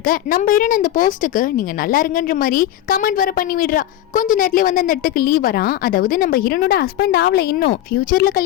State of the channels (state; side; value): quieter; right; 12.7 dB